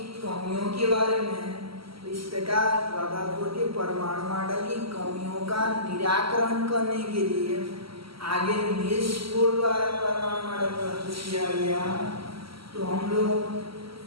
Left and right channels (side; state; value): left; late; 0.75 ms